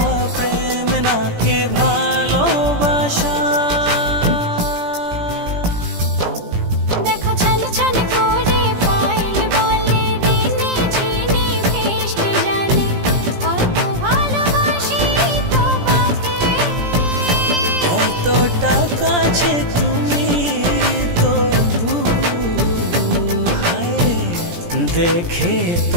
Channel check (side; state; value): left; late; 17 ms